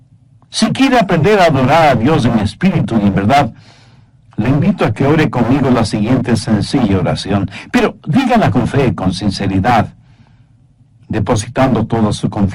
si quiere aprender a adorar a Dios en espíritu y en verdad, le invito a que ore conmigo la siguiente sencilla oración, pero dígala con fe, con sinceridad, depositando toda su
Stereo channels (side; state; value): both; identical; correlation 1.00